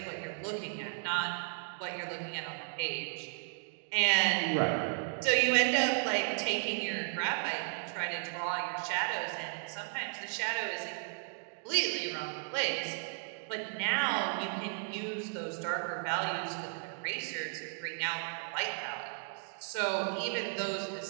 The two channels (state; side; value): silent; left; 55 dB below the other